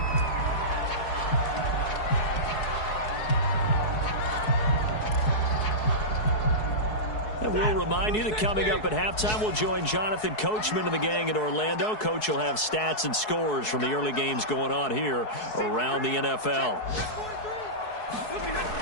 And we'll remind remind you that coming up at halftime, we'll join Jonathan Coachman and the gang in Orlando. Coach will have stats and scores from the early games going on here around the NFL.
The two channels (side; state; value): right; late; 4.7 ms